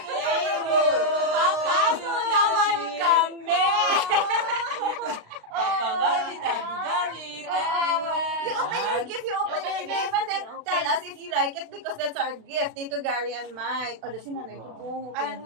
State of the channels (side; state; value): left; late; 36 ms